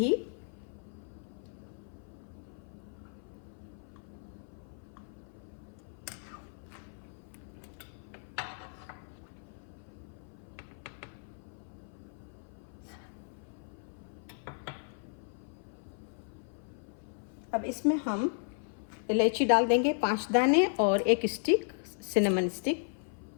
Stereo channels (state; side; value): silent; right; 54 dB below the other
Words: अब इसमें हम इलायची डाल देंगे 5 दाने और 1 स्टिक सिनेमन स्टिक।